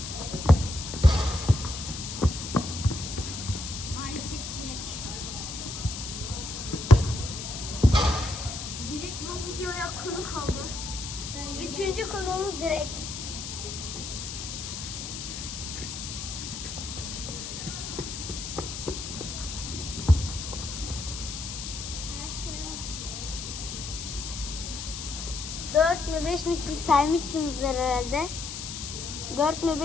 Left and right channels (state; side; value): noise; left; hiss, 7 dB below the sound